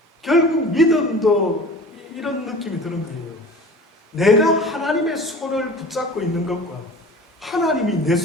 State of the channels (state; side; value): normal; both; correlation 0.40